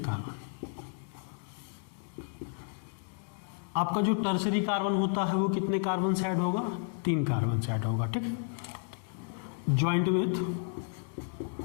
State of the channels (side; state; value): right; silent; 56 dB below the other